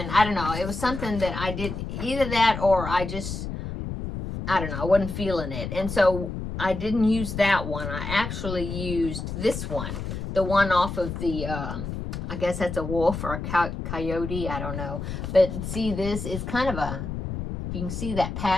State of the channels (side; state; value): left; noise; rumble, 6 dB below the sound